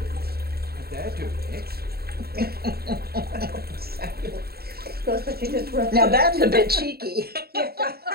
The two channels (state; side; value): late; left; 0.45 ms